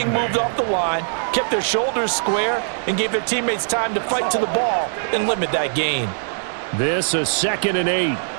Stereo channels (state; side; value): silent; left; digital silence